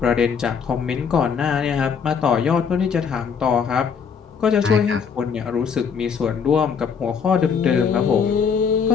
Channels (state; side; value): quieter; right; 6.4 dB